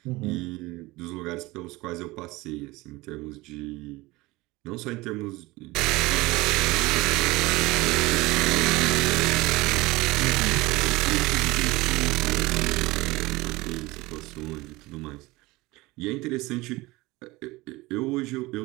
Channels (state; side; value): quieter; left; 21.2 dB